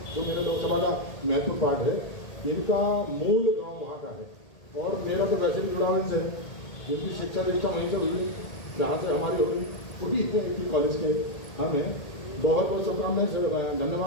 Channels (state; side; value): late; right; 1.8 ms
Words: जो मेरे लोकसभा का महत्वपूर्ण पार्ट है, इनका मूल गांव वहाँ का है और मेरा तो वैसे भी जुड़ा इनसे। इनकी शिक्षा दीक्षा वहीं से हुई, जहाँ से हमारी हुई है कॉलेज के। हमें बहुत बहुत शुभकामनाएं,